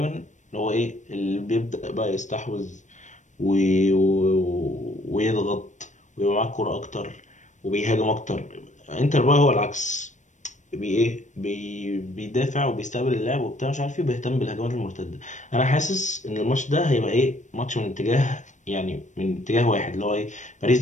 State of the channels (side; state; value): right; late; 0.35 ms